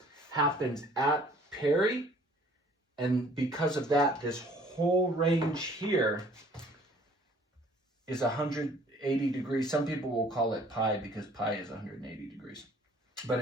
happens at peri. And because of that, this whole range here is 180 degrees. Some people will call it pi because pi is 180 degrees. But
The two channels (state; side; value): normal; both; correlation 0.55